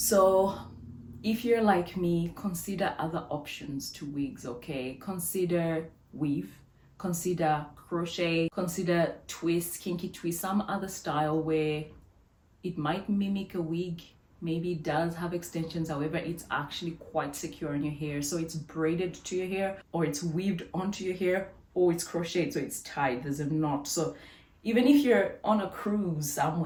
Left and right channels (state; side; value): identical; both; correlation 1.00